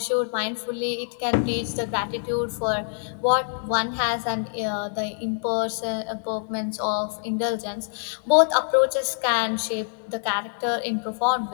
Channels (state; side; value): silent; right; 57 dB below the other